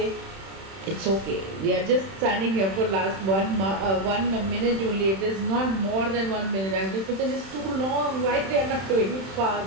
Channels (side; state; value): left; late; 31 ms